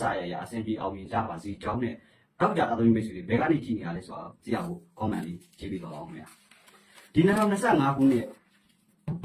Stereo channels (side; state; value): both; identical; correlation 1.00